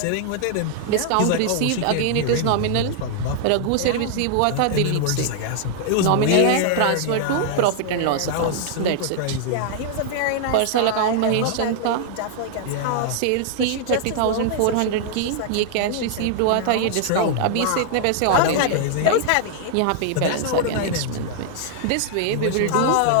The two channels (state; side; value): different; both; correlation 0.00